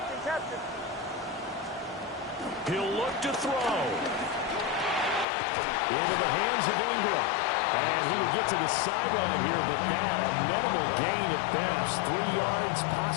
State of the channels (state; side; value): drops out; right; at 5.2 s